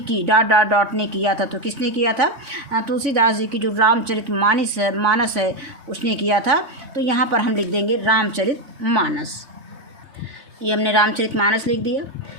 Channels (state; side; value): late; left; 3.6 ms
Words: की ... ने किया था। तो किसने किया था? तुलसीदास जी की जो रामचरितमानस है उसने किया था। तो यहाँ पर हम लिख देंगे रामचरितमानस। ये हमने रामचरितमानस लिख दिया,